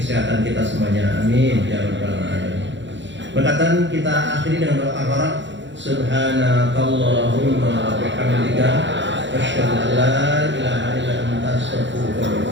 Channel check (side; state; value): left; late; 0.53 ms